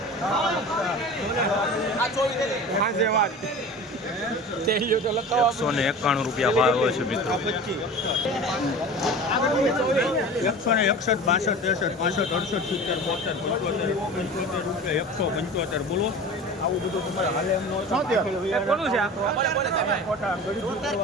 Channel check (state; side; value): normal; both; correlation 0.36